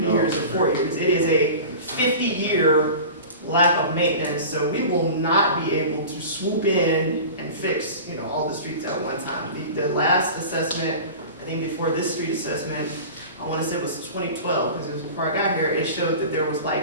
years or 4 years. It is a 50-year lack of maintenance, so we will not be able to swoop in and fix, all the streets at one time. The last assessment, I think before this street assessment, I want to say it was 2012, because it was before I got here, it showed that there was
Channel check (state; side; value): inverted; both; correlation -0.35